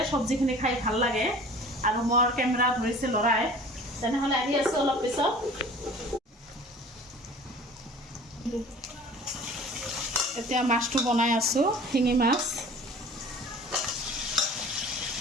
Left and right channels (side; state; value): both; normal; correlation 0.44